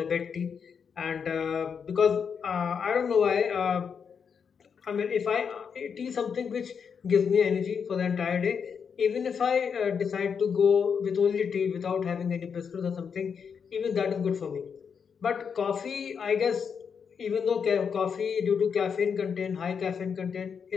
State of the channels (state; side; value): quieter; right; 6.6 dB